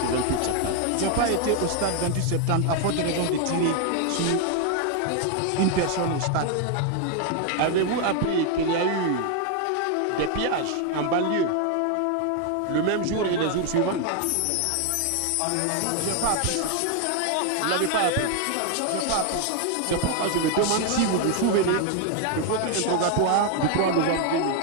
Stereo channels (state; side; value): different; both; correlation 0.01